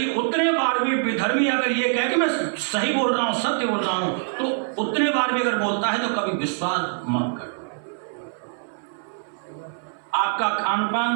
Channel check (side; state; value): left; silent; 61 dB below the other